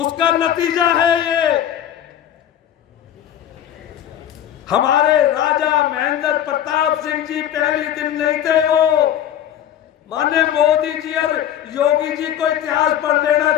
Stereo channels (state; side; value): quieter; right; 10.8 dB